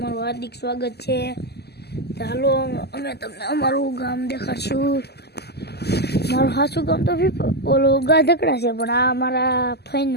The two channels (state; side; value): late; right; 0.47 ms